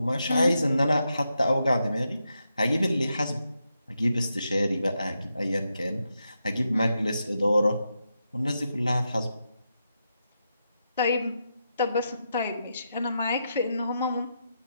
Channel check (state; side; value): inverted; both; correlation -0.85